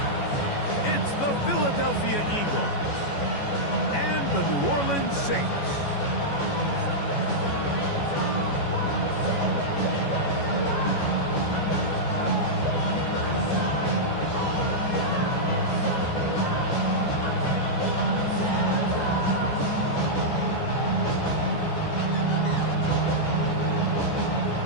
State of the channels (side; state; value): right; late; 14 ms